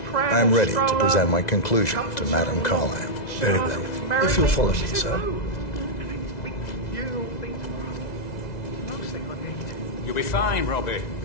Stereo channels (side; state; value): right; late; 2.0 ms